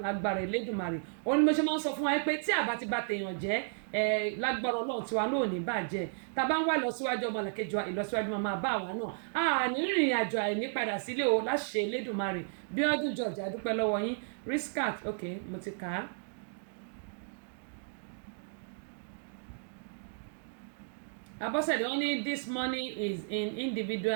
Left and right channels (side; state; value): left; silent; digital silence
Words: lágbára Elédùmarè òun ni mo ṣe máa ń sọ fún wa pé tí àbá ti bá tèèyàn jẹ́ lágbára Ọlọ́run tiwa náà ò ní bàjẹ́ tá a bá ń wá ìlọsíwájú ọmọlàkejì wa ìlọsíwájú máa bá wa náà a ní rìnrìn àjò àìní padà sílé o láṣẹ Elédùmarè Bíọ́dún George adúpẹ́ lọ́wọ́ yín Riskat ok mo ti kà á. Abọ́sẹ̀dé wọ́n ní this money is in